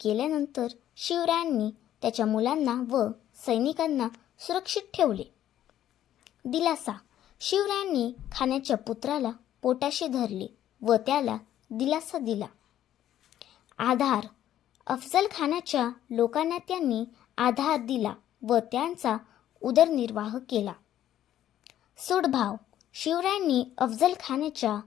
केल्यानंतर शिवरायांनी त्याच्या मुलांना व सैनिकांना सुरक्षित ठेवले. दिलासा. शिवरायांनी खानाच्या पुत्राला पोटाशी धरले व त्याला दिलासा दिला. आधार. अफजल खानाच्या लोकांना त्यांनी आधार दिला व त्यांचा उदरनिर्वाह केला. सूडभाव. शिवरायांनी अफजल खानाच्या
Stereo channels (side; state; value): right; quieter; 11.8 dB